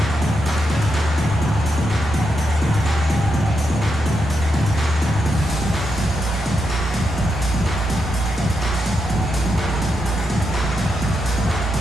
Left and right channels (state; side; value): normal; both; correlation 0.84